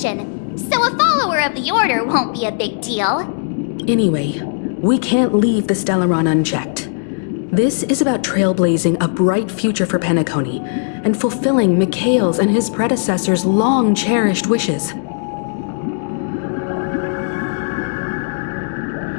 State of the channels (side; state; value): right; silent; digital silence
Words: so a follower of the Order won't be a big deal. Anyway, we can't leave the Stellaron unchecked. This is about trailblazing a bright future for Penacony and fulfilling Mikhail's and his predecessors' long-cherished wishes.